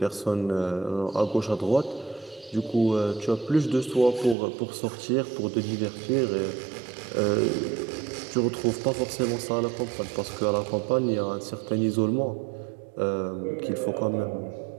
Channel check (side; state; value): left; drops out; at 4.4 s